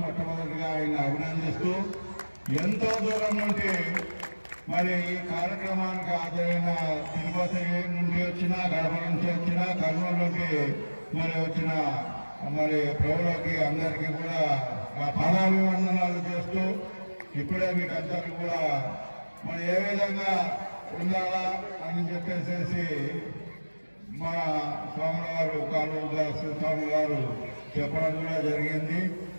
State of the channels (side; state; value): both; inverted; correlation -1.00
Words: మొట్టమొదటిగా ఆయన అభినందిస్తూ, ఎంతో దూరం నుండి మరి ఈ కార్యక్రమానికి హాజరైన తిరుపతి నుండి వచ్చిన, గడప నుంచి వచ్చిన, కర్నూలు నుండి మరి వచ్చిన మరి ప్రభువులకి అందరికీ కూడా పాదాభివందనాలు చేస్తూ, ఇప్పుడే మీకు అందరికీ కూడా మరి ఏ విధంగా ఉండాలా అని చెప్పేసి మా స్వామి గారు కాళూదాస్ స్వామి గారు చెప్పడం కూడా జరిగింది.